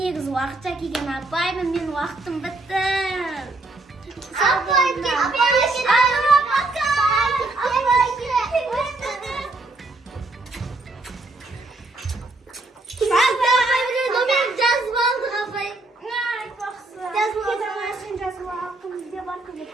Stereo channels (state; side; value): quieter; left; 3.1 dB